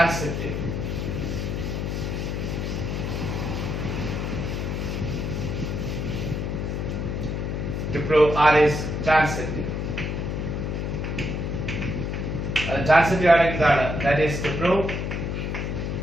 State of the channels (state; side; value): noise; left; hum, 2 dB below the sound